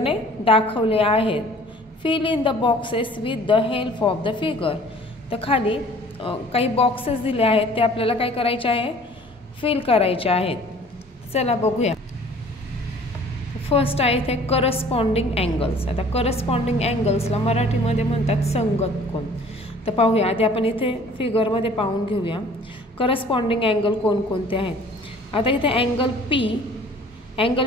दाखवले आहेत. Fill in the boxes with the help of the figure. तर खाली काही बॉक्सेस दिले आहेत ते आपल्याला काय करायचे आहे फिल करायचे आहेत. चला बघूया. फर्स्ट आहे इथे करस्पॉन्डिंग अँगल्स. आता करस्पॉन्डिंग अँगल्सला मराठीमध्ये म्हणतात संगत कोन. तर पाहूया आधी आपण इथे फिगरमध्ये पाहून घेऊया करस्पॉन्डिंग अँगल कोणकोणते आहेत. आता इथे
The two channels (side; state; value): both; normal; correlation 0.51